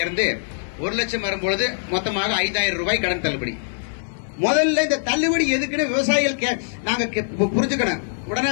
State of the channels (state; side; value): silent; right; 57 dB below the other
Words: 1 லட்சம் வரும்பொழுது மொத்தமாக 5,000 ரூபாய் கடன் தள்ளுபடி. முதல்ல இந்த தள்ளுபடி எதுக்குன்னு விவசாயிகள் நாங்க புரிஞ்சுக்கணும். உடனே